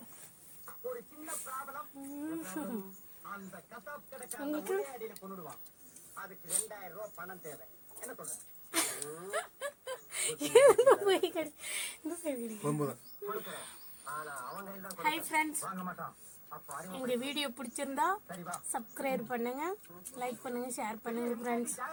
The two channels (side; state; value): both; identical; correlation 1.00